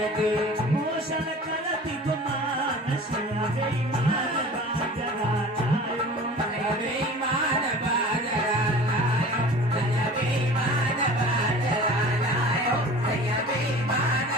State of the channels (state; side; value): normal; both; correlation 0.41